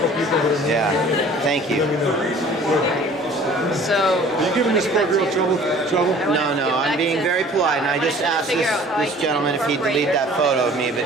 Yeah, thank you. So, Are you giving this poor girl trouble? No, I'm being very polite, and I just asked this gentleman if he'd delete that photo of me, but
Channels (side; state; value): both; normal; correlation 0.50